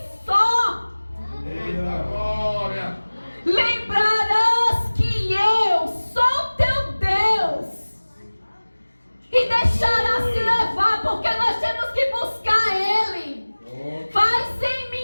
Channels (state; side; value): inverted; both; correlation -1.00